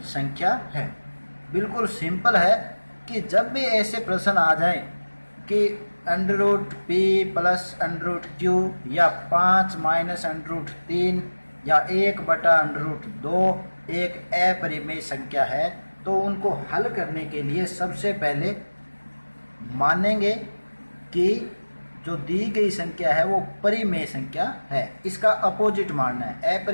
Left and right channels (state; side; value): inverted; both; correlation -1.00